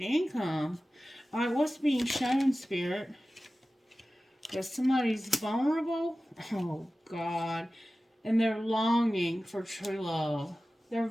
income. Alright, what's being shown, Spirit? That somebody's vulnerable? Oh, God. And they're longing for true love. They're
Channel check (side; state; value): both; normal; correlation 0.96